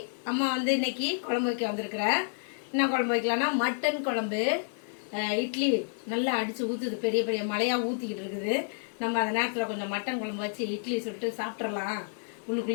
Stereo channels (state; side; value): silent; right; 56 dB below the other